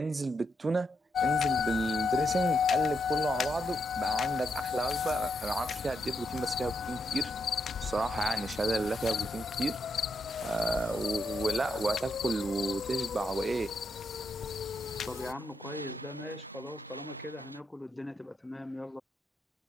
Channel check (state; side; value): normal; both; correlation 0.81